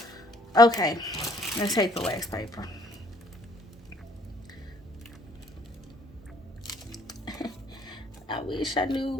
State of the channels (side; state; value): both; normal; correlation 0.62